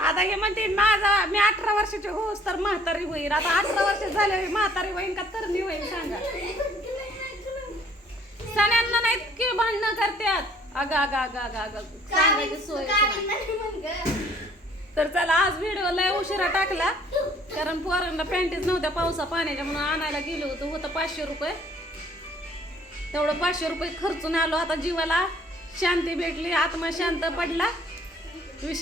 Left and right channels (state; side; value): normal; both; correlation 0.58